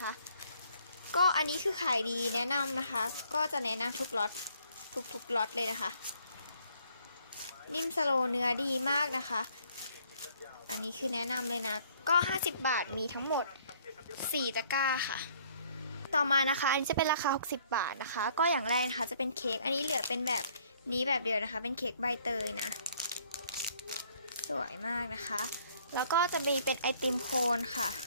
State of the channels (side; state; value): both; inverted; correlation -0.62